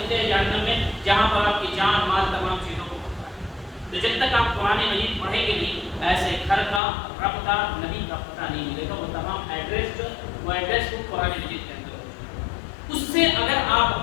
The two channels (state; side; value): drops out; right; at 6.8 s